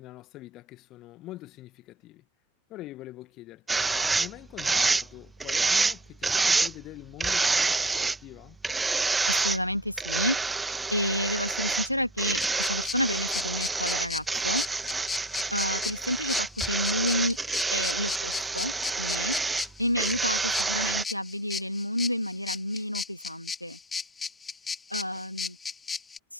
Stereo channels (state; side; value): normal; both; correlation 0.33